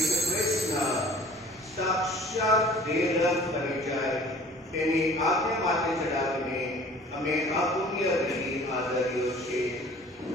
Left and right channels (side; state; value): both; normal; correlation 0.49